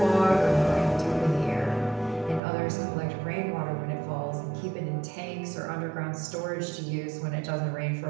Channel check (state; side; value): drops out; left; at 2.4 s